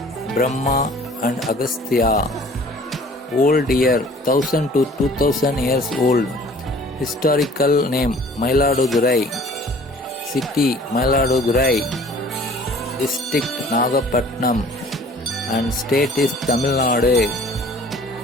Brahma and Agastya. Old year 1000 to 2000 years old. Historical name Mayiladurai. City Mayiladurai. District Nagapatnam. And state is Tamil Nadu.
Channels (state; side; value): normal; both; correlation 0.51